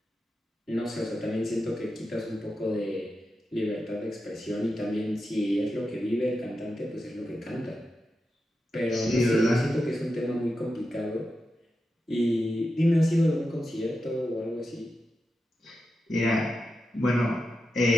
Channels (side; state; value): both; normal; correlation 0.89